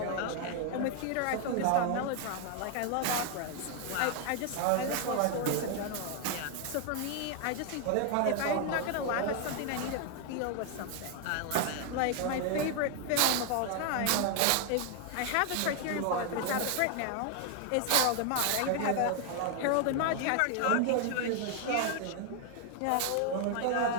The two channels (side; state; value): both; different; correlation 0.00